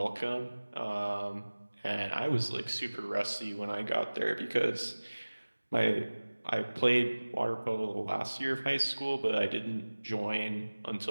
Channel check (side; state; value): both; inverted; correlation -1.00